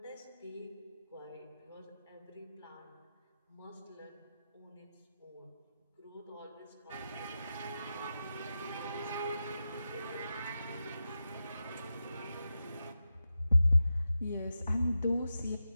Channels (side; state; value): both; inverted; correlation -0.90